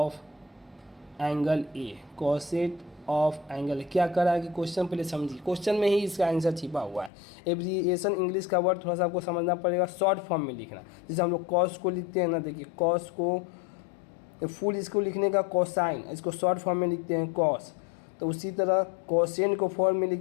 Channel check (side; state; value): right; drops out; at 7.1 s